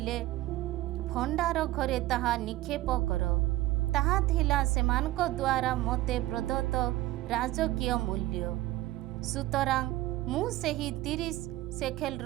ଭଣ୍ଡାର ଘରେ ତାହା ନିକ୍ଷେପ କର। ତାହା ଥିଲା ସେମାନଙ୍କ ଦ୍ୱାରା ମୋତେ ପ୍ରଦତ୍ତ ରାଜକୀୟ ମୂଲ୍ୟ। ସୁତରାଂ ମୁଁ ସେହି 30 ଶେକେଲ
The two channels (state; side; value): quieter; left; 17.0 dB